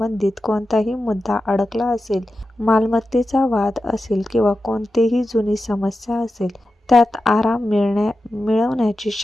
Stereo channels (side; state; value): both; normal; correlation 0.92